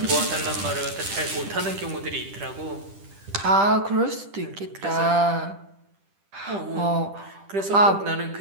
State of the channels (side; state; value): left; late; 10 ms